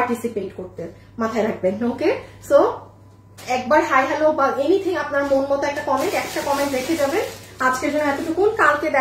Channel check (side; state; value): both; identical; correlation 1.00